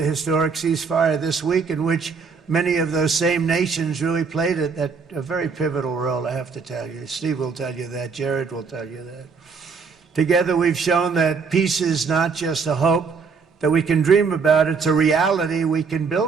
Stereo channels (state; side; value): quieter; left; 5.3 dB